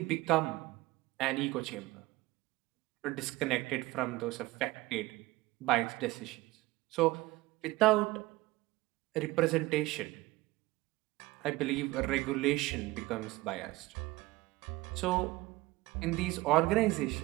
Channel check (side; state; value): left; quieter; 19.7 dB